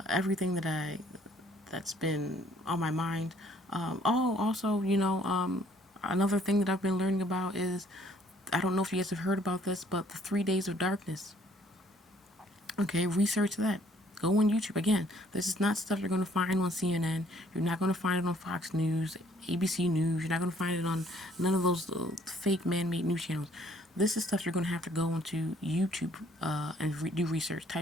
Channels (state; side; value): normal; both; correlation 0.62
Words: everything that's been on my mind. Also, you know, another thing that I've been learning about is, I don't know if you guys have heard about this, but the 3 days of darkness. Okay, research that. Go on YouTube. Again, this is not stuff you're going to find on CNN. You're not going to find it on Fox News, ABC News. You're not going to find it on none of those fake man-made news channels. This is stuff you're going to have to go onto YouTube and do research.